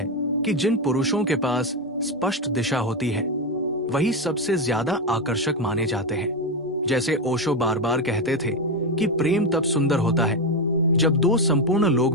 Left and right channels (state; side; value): normal; both; correlation 0.10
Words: कि जिन पुरुषों के पास स्पष्ट दिशा होती है वही सबसे ज्यादा आकर्षक माने जाते हैं। जैसे ओशो बार बार कहते थे कि प्रेम तब सुंदर होता है जब दो संपूर्ण